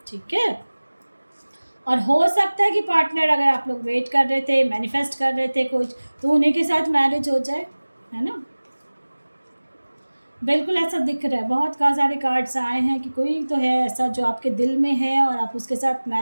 ठीक है, और हो सकता है कि पार्टनर, अगर आप लोग वेट कर रहे थे, मैनिफेस्ट कर रहे थे कुछ, तो उन्हीं के साथ मैरिज हो जाए, है ना। बिल्कुल ऐसा दिख रहा है, बहुत सारे कार्ड्स आए हैं कि कोई तो है ऐसा जो आपके दिल में है और आप उसके साथ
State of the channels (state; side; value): inverted; both; correlation -1.00